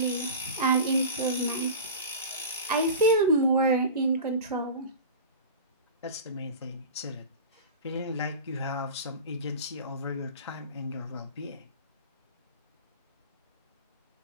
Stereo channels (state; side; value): inverted; both; correlation -0.32